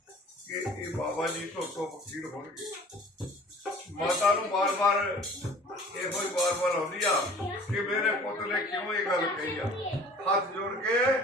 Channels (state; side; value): normal; both; correlation 0.48